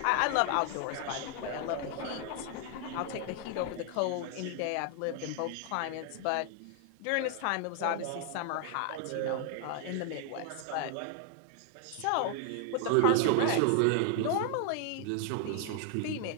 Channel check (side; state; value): both; different; correlation 0.00